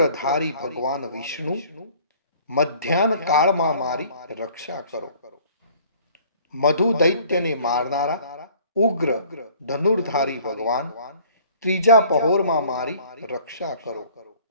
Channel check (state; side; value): inverted; both; correlation -0.53